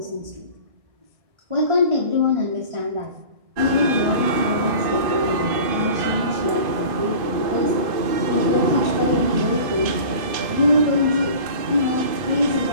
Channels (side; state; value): left; late; 2.5 ms